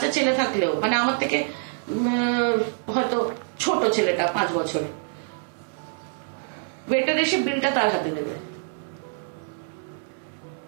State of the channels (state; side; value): silent; left; 61 dB below the other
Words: ছেলে থাকলেও, মানে আমার থেকে হয়তো ছোট ছেলেটা 5 বছরে, ওয়েটার এসে বিলটা তার হাতে দেবে।